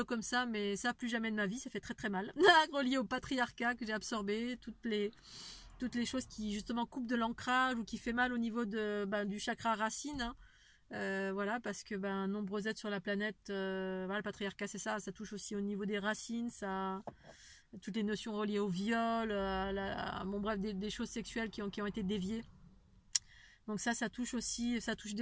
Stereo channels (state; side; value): identical; both; correlation 1.00